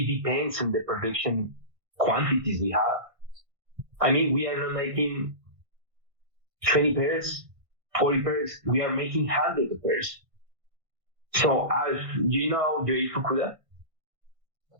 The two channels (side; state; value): left; late; 1.5 ms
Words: depends on the production quantities we have. We are not making 20 pairs, 40 pairs, we are making hundreds of pairs. So as you know, Joey Fukuda?